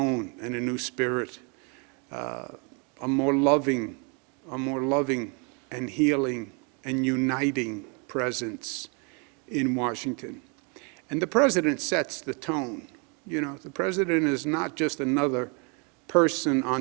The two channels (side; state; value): left; quieter; 34.8 dB